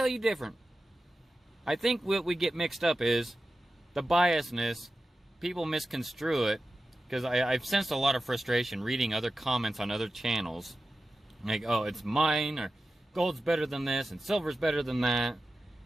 you different? I think what we get mixed up is the biasness. People misconstrue it, because I've sensed a lot of frustration reading other comments on other channels. Like, oh, it's mine, or gold's better than this, and silver's better than that.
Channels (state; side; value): normal; both; correlation 0.93